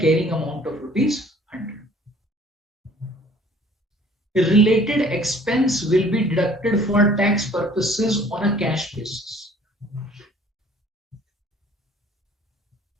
amount of rupees 100. Related expense will be deducted for tax purposes on a cash basis.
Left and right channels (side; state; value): both; normal; correlation 0.54